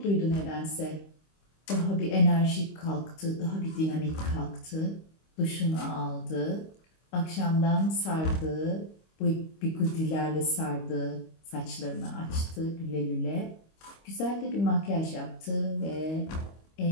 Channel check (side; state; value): right; late; 25 ms